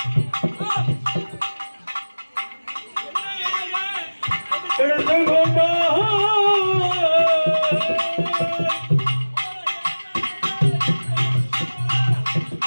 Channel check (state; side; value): inverted; both; correlation -1.00